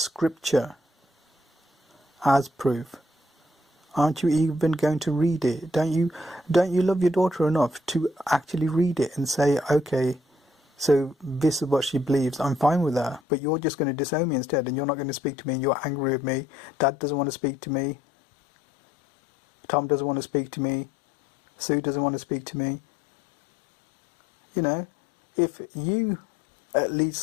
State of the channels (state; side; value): drops out; right; at 13.2 s